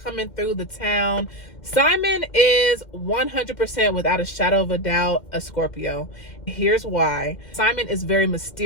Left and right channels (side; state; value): right; late; 2.1 ms